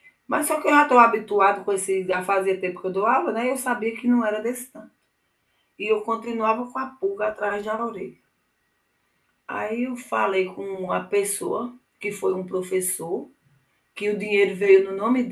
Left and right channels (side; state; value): both; identical; correlation 1.00